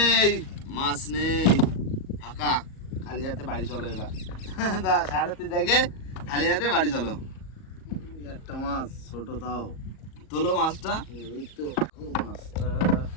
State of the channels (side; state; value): right; late; 38 ms